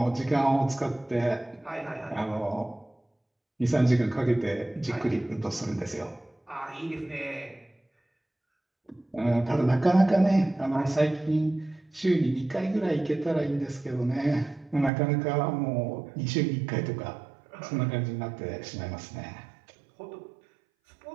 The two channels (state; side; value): drops out; left; at 14.9 s